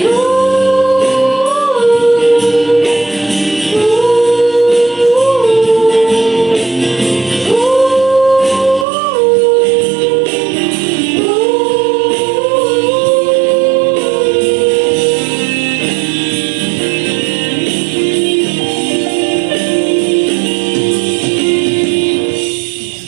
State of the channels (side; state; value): left; drops out; at 8.8 s